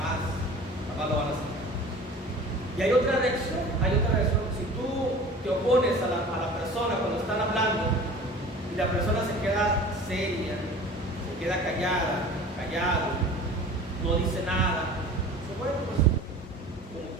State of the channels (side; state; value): both; normal; correlation 0.41